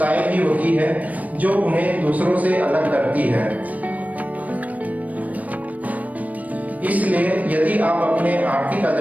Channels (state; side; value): late; left; 0.072 ms